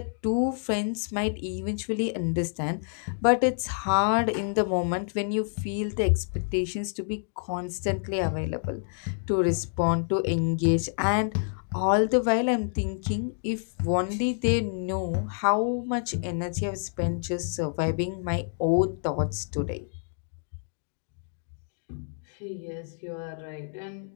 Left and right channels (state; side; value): silent; right; digital silence